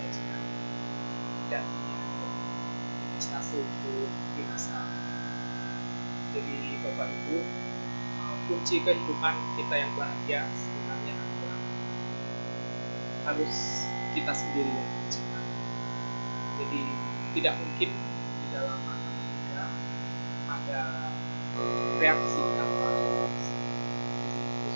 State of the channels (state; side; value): inverted; both; correlation -1.00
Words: dan investasi untuk di masa mendatang. Jadi Bapak Ibu, kunci kehidupan kita yang bahagia sebenarnya adalah harus kita sendiri yang menciptakan. Jadi tidak mungkin di dalam agama Buddha ada reaksi tanpa reaksi. Jadi itu